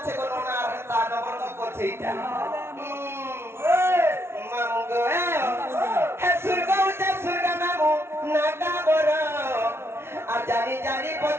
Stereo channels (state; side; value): late; left; 0.12 ms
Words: কোন না হেতা নবর করছে এটা মামু গো হে সুরগা উঠে সুরগা মামু নাগা বড় আর জানি জানি